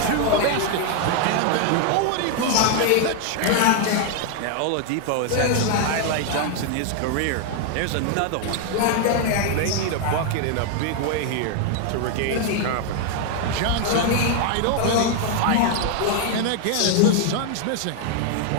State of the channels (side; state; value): both; different; correlation 0.00